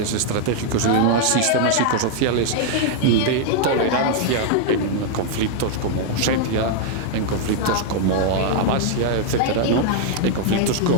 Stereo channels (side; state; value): both; different; correlation 0.00